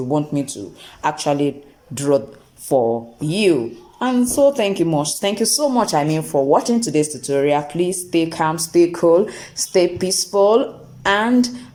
want me to actually draw for you. And so thank you so much, for watching today's tutorial. Please stay calm, stay cool, stay peaceful, and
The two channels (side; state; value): both; identical; correlation 1.00